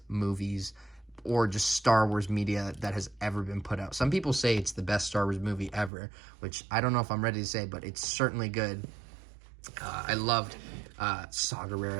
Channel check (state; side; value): drops out; left; at 5.9 s